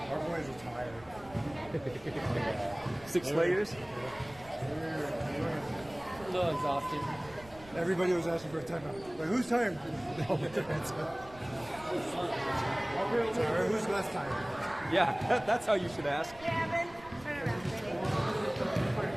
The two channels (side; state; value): right; noise; rumble, 21 dB below the sound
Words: our boys are tired. 6 layers. A little exhausted. Everybody was asking for a timeout. Like, who's tired? Sorry, who's less tired? Yeah, that's how you should ask. Gavin, turn around,